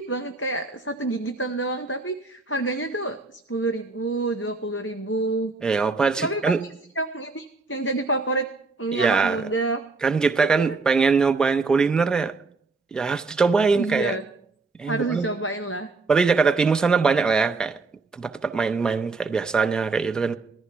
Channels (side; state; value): left; quieter; 4.0 dB